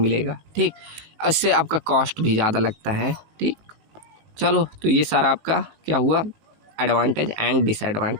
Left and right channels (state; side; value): late; left; 18 ms